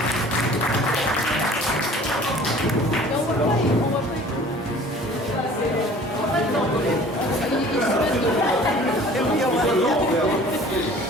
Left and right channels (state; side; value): normal; both; correlation 0.48